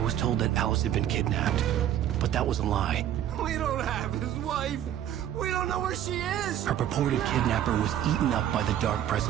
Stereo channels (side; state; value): left; quieter; 11.0 dB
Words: was told that Alice had been kidnapped, but that was a lie. We don't have his wife! We don't know where she is! Her purported kidnapper was eaten up by the dark